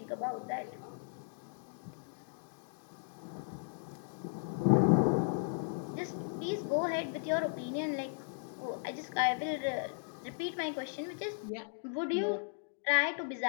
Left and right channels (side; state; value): right; silent; digital silence